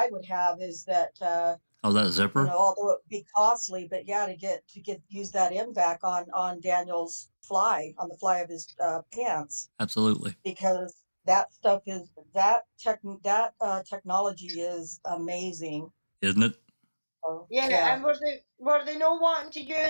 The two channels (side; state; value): both; inverted; correlation -1.00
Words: would have is that that zipper, although it would be costly, but to use that MVAC on Daniel's on the fly of his pants. Absolutely, because that stuff is technology is amazing, isn't it? Yeah, and were they not wanting to